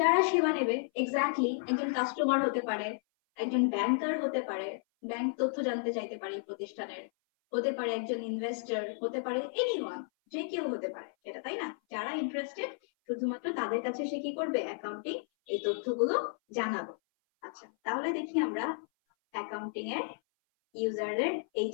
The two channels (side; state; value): right; silent; 56 dB below the other